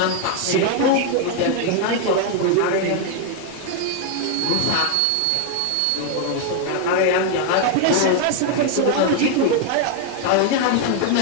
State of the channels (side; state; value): both; different; correlation 0.00